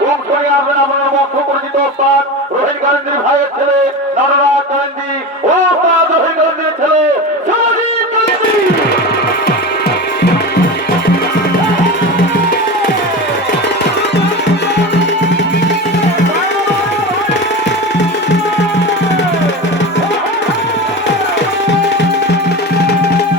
অংশ নিয়ে আসবেন আপনার মধ্য পরিচিত ওস্তাদ রোহিত গান্ধীর ভাইয়ের ছেলে নররাজ গান্ধী, ওস্তাদ রোহিত গান্ধীর ছেলে সমাজিৎ গান্ধী।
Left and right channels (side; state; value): both; normal; correlation 0.26